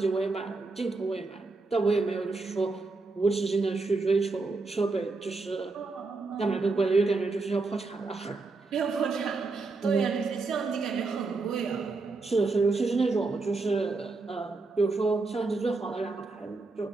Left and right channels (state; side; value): quieter; left; 3.7 dB